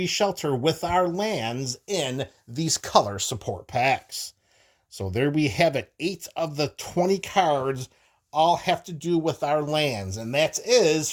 Shelter with our lands in these color support packs. So there we have it. 8 of the 20 cards all have to do with our lands, and that is,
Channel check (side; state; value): both; identical; correlation 1.00